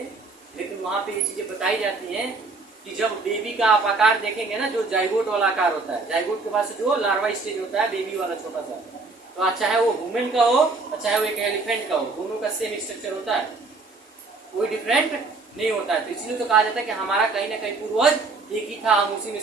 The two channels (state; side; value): quieter; left; 3.8 dB